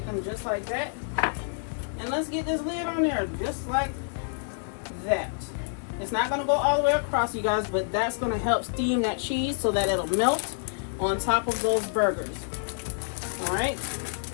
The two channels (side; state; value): right; silent; digital silence